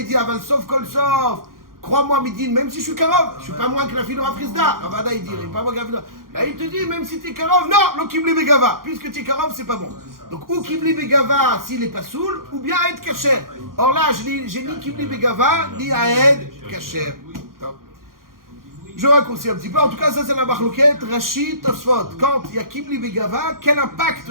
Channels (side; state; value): left; late; 0.91 ms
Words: dit, Aval Sof Kol Sof. Crois-moi, Midin, même si je suis Karov, je ne suis pas moins que la fille de Rav Frisda. Ravada, il dit, il n'est pas moins que la fille de... Là, il te dit, même si tu es Karov, non, le Kibli Begava. Puisque tu es Karov, c'est pas bon. Donc, ou Kibli Begava s'il n'est pas saoul, ou bien Aed Kacher. Or là, j'ai ni Kibli Begava, ni Aed Kacher. Je raccourcis un petit peu. En tout cas, ça, c'est la Machloket, Rashi, Tosfot. Quand il y a Kibli Begava, quel